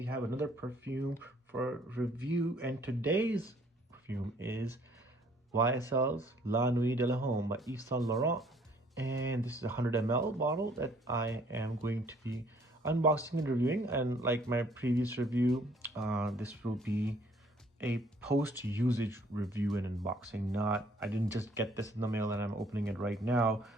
have another perfume for review, and today's perfume is YSL's La Nuit De L'Homme by YvesSaintLaurent. And this is a 100 ml bottle that I am going to be unboxing and reviewing. And like my previous review, this will be a post-usage review and unboxing. I didn't just get this in the mail and I'm opening it right now.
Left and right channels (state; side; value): normal; both; correlation 0.60